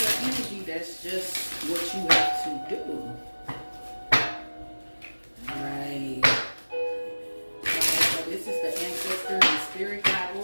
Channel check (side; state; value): both; inverted; correlation -1.00